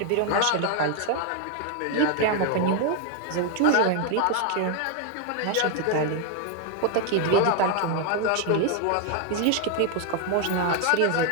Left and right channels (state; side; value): different; both; correlation 0.00